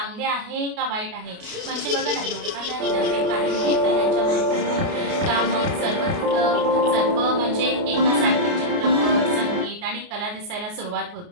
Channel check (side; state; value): left; late; 29 ms